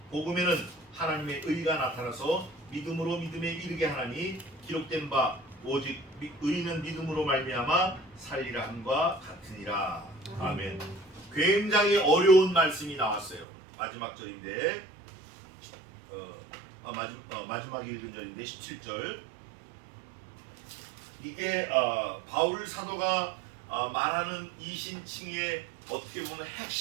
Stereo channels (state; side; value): drops out; left; at 13.5 s